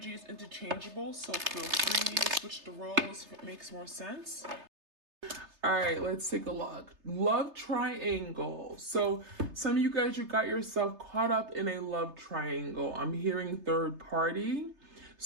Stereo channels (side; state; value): left; late; 3.3 ms